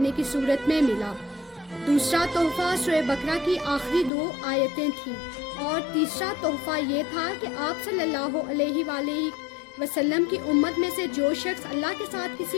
کی صورت میں ملا۔ دوسرا تحفہ سورہ بقرہ کی آخری 2 آیتیں تھیں، اور تیسرا تحفہ یہ تھا کہ آپ صلی اللہ علیہ وآلہ وسلم کی امت میں سے جو شخص اللہ کے ساتھ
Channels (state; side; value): drops out; right; at 4.1 s